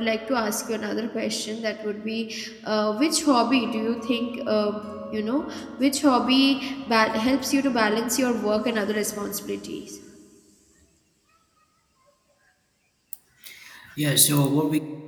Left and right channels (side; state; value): both; identical; correlation 1.00